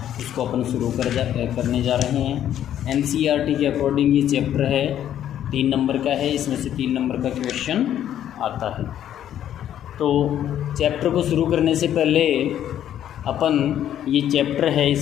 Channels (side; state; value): right; quieter; 10.8 dB